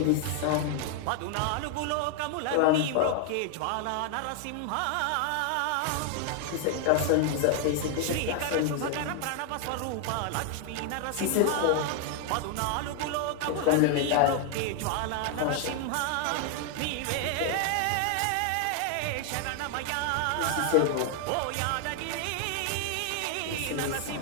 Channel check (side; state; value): both; different; correlation 0.00